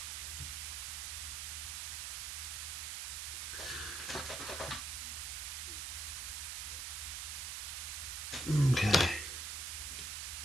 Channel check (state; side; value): noise; right; hiss, 3 dB below the sound